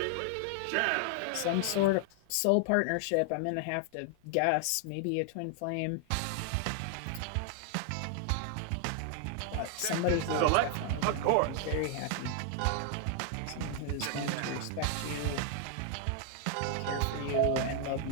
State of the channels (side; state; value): both; different; correlation 0.00